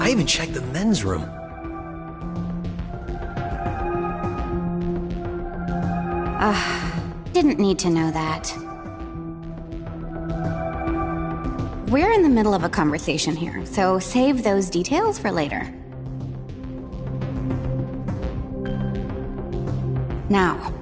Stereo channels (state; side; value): identical; both; correlation 1.00